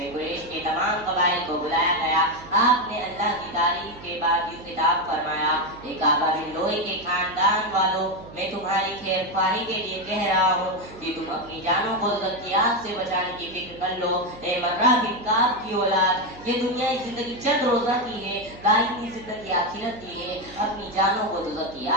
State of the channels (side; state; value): right; noise; hum, 18 dB below the sound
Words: कुरैश के तमाम कबाइल को बुलाया गया। आपने अल्लाह की तारीफ के बाद यूं खिताब फरमाया, एक आबा बिन लोई के खानदान वालों, मैं तुम्हारी खैरख्वाही के लिए कह रहा हूँ कि तुम अपनी जानों को ज़ियादत से बचाने की फिक्र कर लो। ए मर्रा बिन काब की औलाद, ये दुनिया की जिंदगी चंद रोजा की है, दायमी जिंदगी आखिरत की है। अपनी जानों को दोज़ख की